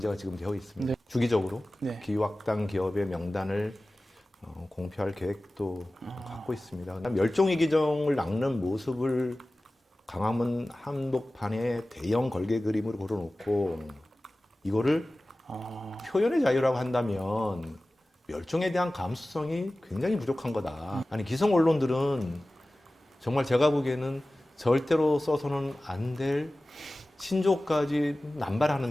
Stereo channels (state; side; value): normal; both; correlation 0.97